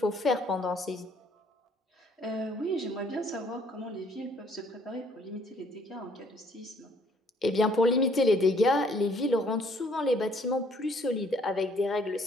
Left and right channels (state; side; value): normal; both; correlation 0.63